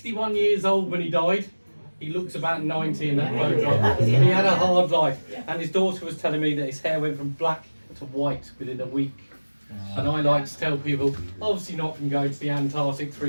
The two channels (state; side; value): inverted; both; correlation -1.00